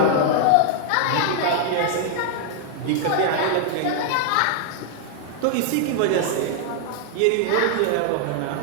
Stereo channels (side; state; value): both; different; correlation 0.00